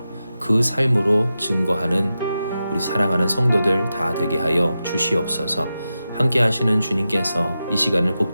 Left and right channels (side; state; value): both; inverted; correlation -0.91